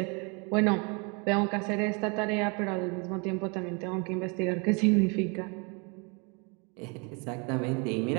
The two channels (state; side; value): quieter; left; 32.2 dB